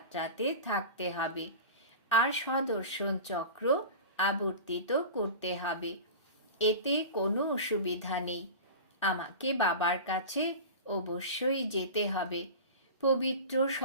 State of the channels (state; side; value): inverted; both; correlation -0.32